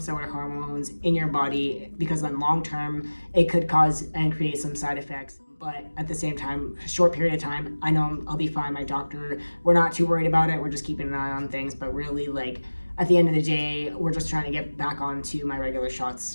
of hormones in your body, because then long term it could cause and create some side effects. But at the same time, a short period of time, I know I'll be fine. My doctor, we're not too worried about it. We're just keeping an eye on things. But really, like, at the end of the day, we're just trying to get back onto my regular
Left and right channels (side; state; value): both; inverted; correlation -1.00